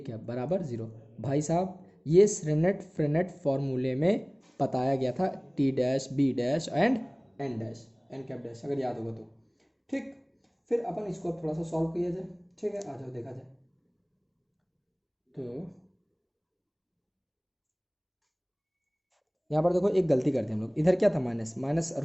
बराबर 0। भाई साहब ये फ्रेनेट फॉर्मूले में बताया गया था, T dash B dash and N dash N cap dash, अगर याद होगा तो, ठीक, फिर अपन इसको थोड़ा सा सॉल्व किया जाए, ठीक है, आ जाओ देखा जाए। तो यहाँ पर देखो एक गलती कर दी हम लोग, इधर क्या था, माइनस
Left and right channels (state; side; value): identical; both; correlation 1.00